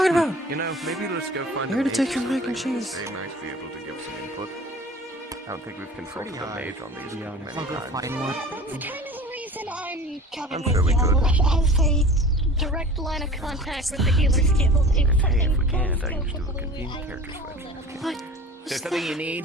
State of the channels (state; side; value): normal; both; correlation 0.41